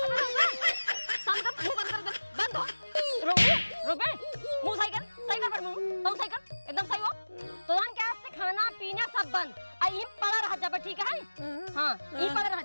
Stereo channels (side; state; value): both; inverted; correlation -1.00